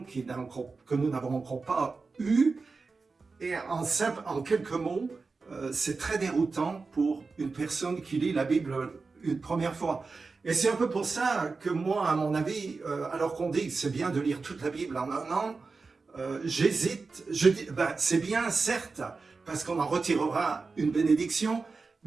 que nous n'avons encore pas eue, et en quelques mots, c'est très déroutant pour une personne qui lit la Bible une première fois. Et c'est un peu pour ça que moi, à mon avis, alors qu'on dit que c'est bien de lire toute la Bible en un an, j'hésite. Je dis, c'est bien, certes, parce qu'on en retirera une bénédiction,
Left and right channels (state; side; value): quieter; left; 4.2 dB